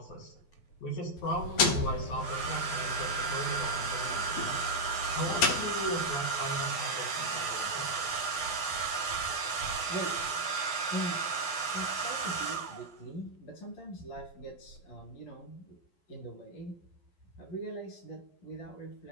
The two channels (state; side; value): late; right; 11 ms